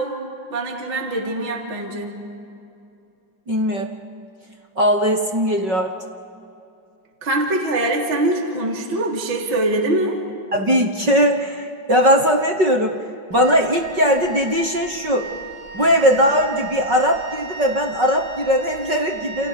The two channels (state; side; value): late; left; 5.4 ms